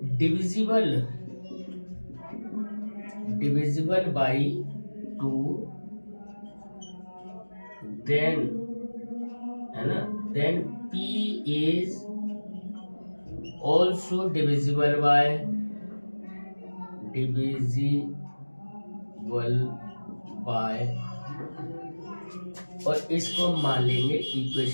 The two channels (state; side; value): inverted; both; correlation -1.00